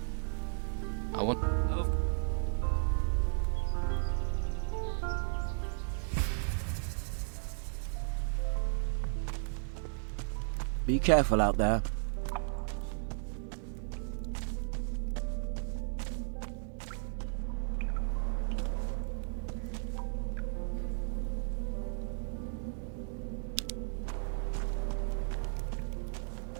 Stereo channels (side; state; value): left; silent; digital silence